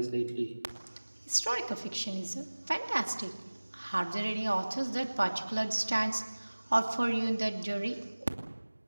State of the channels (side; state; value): both; inverted; correlation -1.00